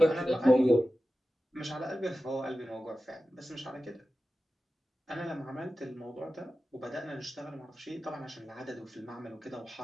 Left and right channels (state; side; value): normal; both; correlation 0.94